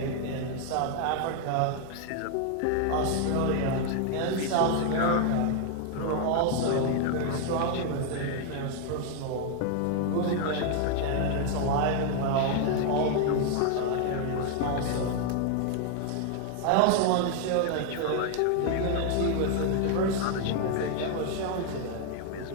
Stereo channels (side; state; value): both; different; correlation 0.00